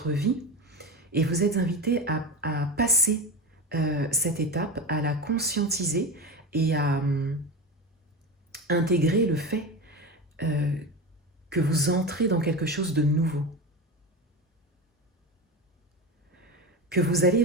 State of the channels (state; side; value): normal; both; correlation 0.23